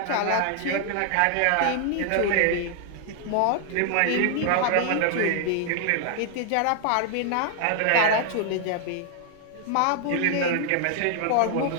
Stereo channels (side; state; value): both; different; correlation 0.00